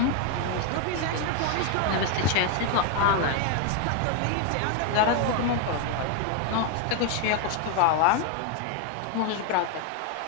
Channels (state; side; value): different; both; correlation 0.01